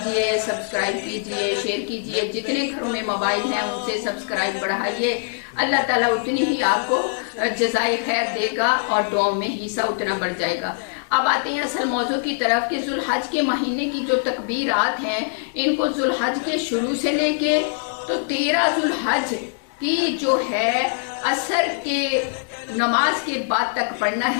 सब्सक्राइब कीजिए, शेयर कीजिए। जितने घरों में मोबाइल हैं उनसे सब्सक्राइब बढ़ाइए। अल्लाह ताला उतनी ही आपको जज़ाए खैर देगा और दुआओं में हिस्सा उतना बढ़ जाएगा। अब आते हैं असल मौजू की तरफ कि जुल्हज के महीने की जो तकबीरात हैं, इनको जुल्हज के शुरू से लेके तो 13 जुल्हज की जो है असर के नमाज के बाद तक पढ़ना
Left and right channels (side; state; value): right; silent; digital silence